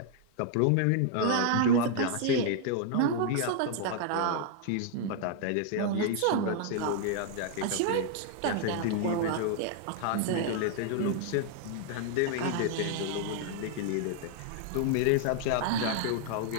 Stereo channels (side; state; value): both; different; correlation 0.00